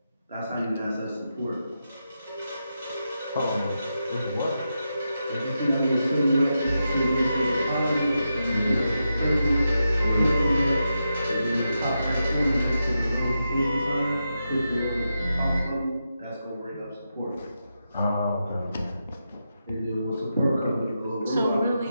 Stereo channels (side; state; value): both; inverted; correlation -0.87